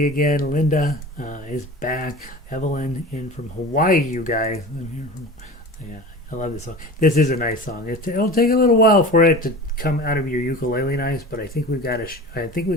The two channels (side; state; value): both; normal; correlation 0.35